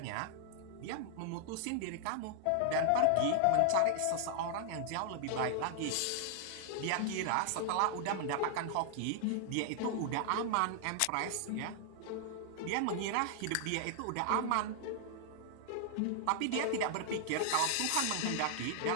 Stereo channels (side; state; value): both; different; correlation -0.01